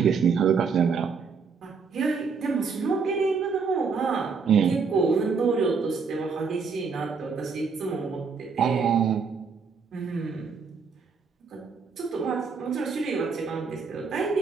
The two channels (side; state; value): left; quieter; 5.3 dB